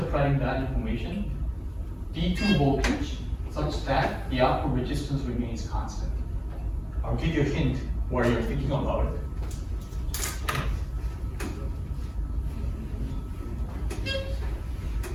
that information? D2 voltage such that the output resistance remains constant. I'll give you a hint while you're thinking about it.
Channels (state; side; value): identical; both; correlation 1.00